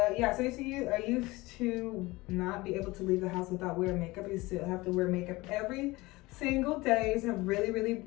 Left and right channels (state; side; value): quieter; right; 21.2 dB